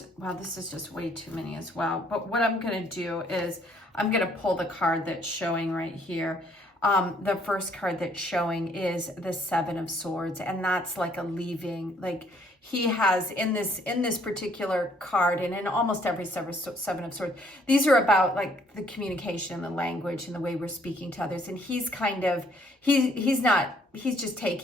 wow, this is just way too many as well. But what I'm going to do is I'm going to pull the card that's showing right here. The first card that's showing is the Seven of Swords, and that's like a leaving. Like he has in this particular card, and in almost every Seven of Swords, these are about like the communication, the language, and the way we're speaking to others. And he's kind of he's just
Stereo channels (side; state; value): both; normal; correlation 0.65